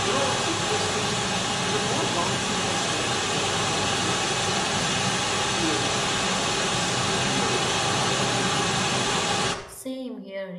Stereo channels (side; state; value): both; identical; correlation 1.00